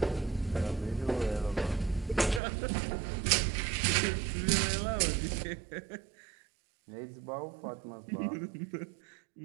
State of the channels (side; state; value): left; drops out; at 2.4 s